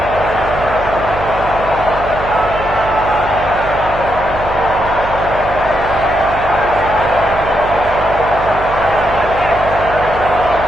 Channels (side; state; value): right; noise; hum, 10 dB below the sound